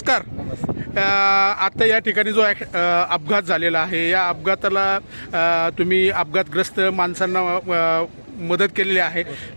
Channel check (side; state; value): both; inverted; correlation -1.00